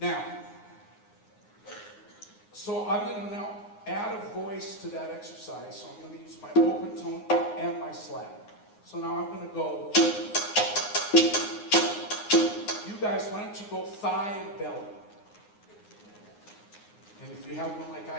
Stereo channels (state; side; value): late; right; 9.6 ms